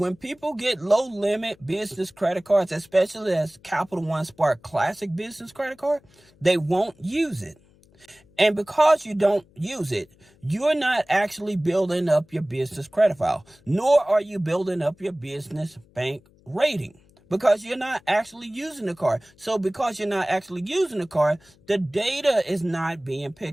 people get low limit business credit cards, especially as Capital One Spark Classic business credit card, they won't use it. And because you don't use it, you're not actually building up your business credit file, nor are you building up your business bank rating. Because you're not actually using the card. So because you're not actually using the card, the data is not being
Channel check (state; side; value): noise; left; hum, 30 dB below the sound